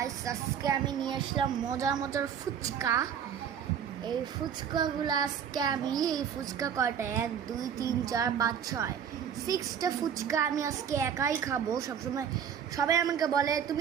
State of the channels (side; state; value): left; quieter; 8.3 dB